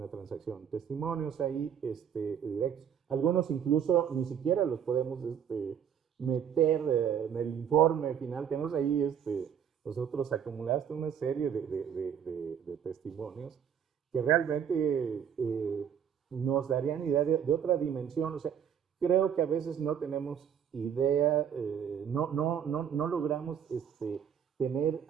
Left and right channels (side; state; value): left; quieter; 8.5 dB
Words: transacción. Testimonios ahí directos. Algunos incluso ni siquiera los podemos meter en el informe final. Tenemos ahí nosotros acumulaste una serie de testimonios que realmente nos darían idea de otra dimensión. O sea, creo que a veces no tenemos idea, no logramos tener